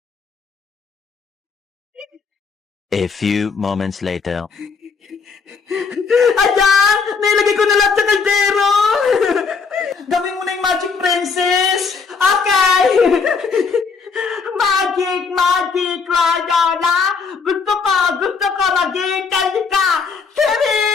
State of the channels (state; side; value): quieter; right; 5.2 dB